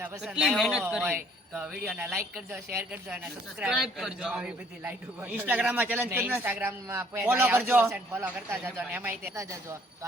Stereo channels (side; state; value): both; normal; correlation 0.61